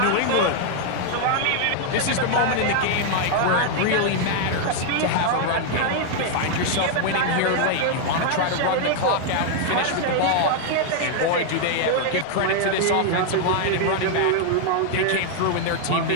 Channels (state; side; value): different; both; correlation 0.00